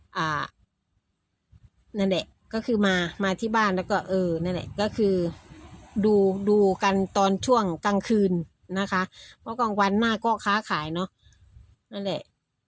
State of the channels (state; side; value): identical; both; correlation 1.00